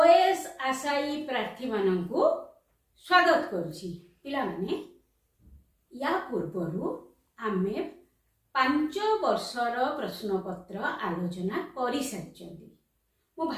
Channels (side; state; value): both; identical; correlation 1.00